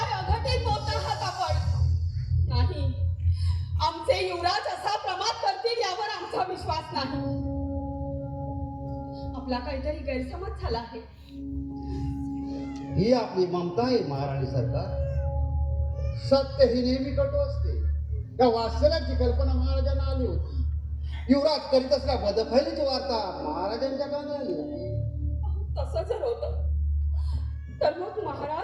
अघटित बोलत आहात आपण? नाही, आमचे युवराज असा प्रमाद करतील यावर आमचा विश्वास नाही. आपला काहीतरी गैरसमज झाला आहे. ही आपली ममता आहे महाराणी सरकार. सत्य ही नेहमी कटू असते. या वास्तव्याची कल्पना महाराजांना आली होती. युवराज करीत असल्या बदफैलीची वार्ता महाराजांच्या कानी आली होती. तसं जर होतं तर मग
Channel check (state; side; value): identical; both; correlation 1.00